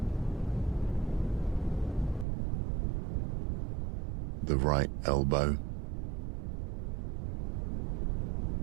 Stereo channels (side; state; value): left; drops out; at 2.2 s